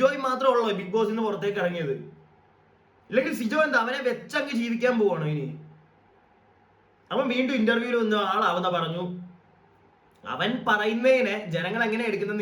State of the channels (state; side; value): identical; both; correlation 1.00